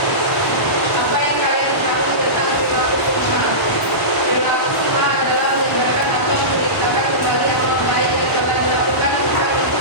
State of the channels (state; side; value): late; right; 1.0 ms